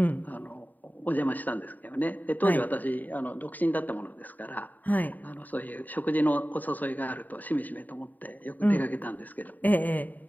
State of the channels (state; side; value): late; right; 0.084 ms